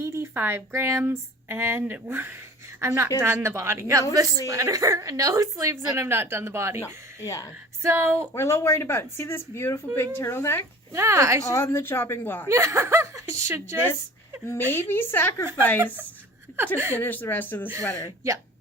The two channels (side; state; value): both; normal; correlation 0.44